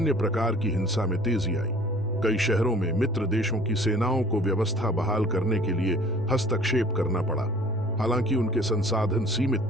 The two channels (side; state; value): both; normal; correlation 0.50